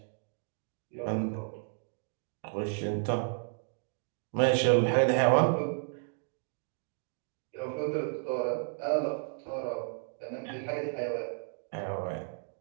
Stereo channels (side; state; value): left; silent; 56 dB below the other